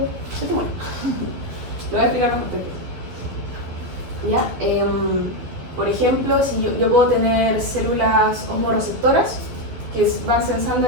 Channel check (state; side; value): late; left; 12 ms